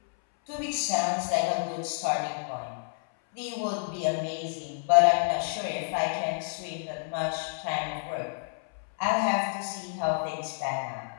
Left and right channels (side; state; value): right; silent; 58 dB below the other